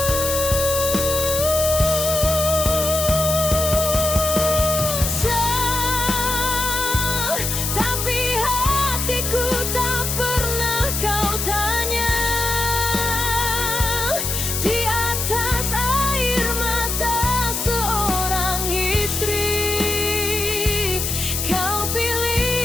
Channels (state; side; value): noise; left; hiss, 2 dB below the sound